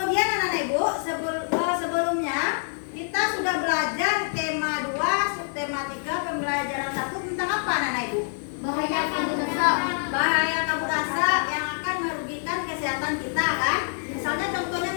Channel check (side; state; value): right; silent; 61 dB below the other